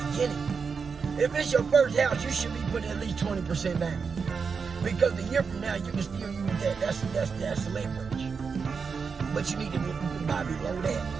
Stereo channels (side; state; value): left; quieter; 5.5 dB